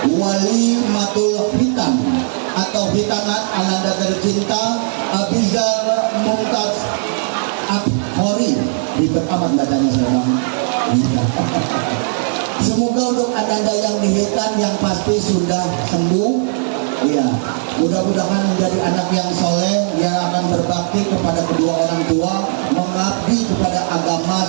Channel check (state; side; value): silent; left; 57 dB below the other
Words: Walimatul Hitan atau hitanat ananda tercinta Abizar Mumtaz Akhori. Ribet amat bacanya sekarang. Semoga untuk ananda yang dihitan yang pasti sudah sembuh. Iya, mudah-mudahan menjadi anak yang soleh yang akan berbakti kepada kedua orang tua, mengabdi kepada agama